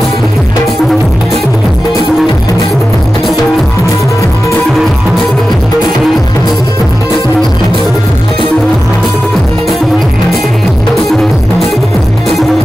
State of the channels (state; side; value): normal; both; correlation 0.93